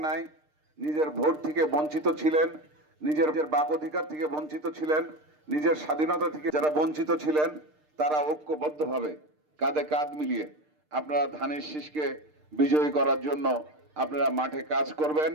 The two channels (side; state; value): left; late; 6.6 ms